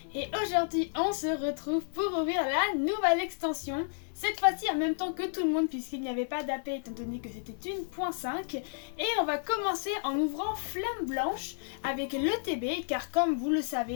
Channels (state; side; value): silent; right; digital silence